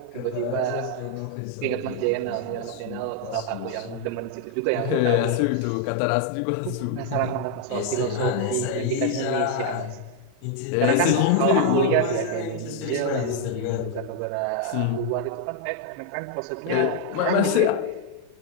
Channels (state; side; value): different; both; correlation 0.00